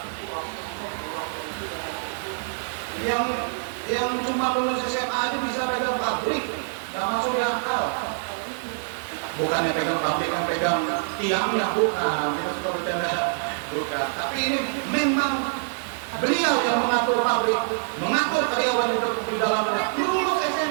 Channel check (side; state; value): left; silent; 61 dB below the other